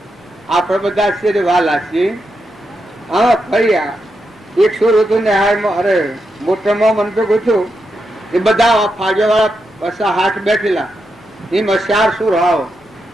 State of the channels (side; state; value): both; normal; correlation 0.85